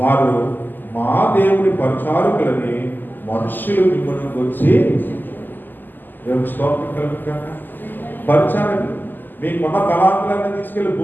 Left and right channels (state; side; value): late; right; 0.089 ms